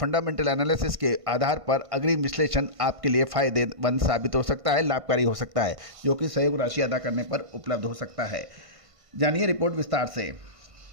एनालिसिस के आधार पर अग्रिम विश्लेषण आपके लिए फायदेमंद साबित हो सकता है, लाभकारी हो सकता है, जो कि सहयोग राशि अदा करने पर उपलब्ध हो सकता है। जानिए रिपोर्ट विस्तार से।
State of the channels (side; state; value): left; late; 1.5 ms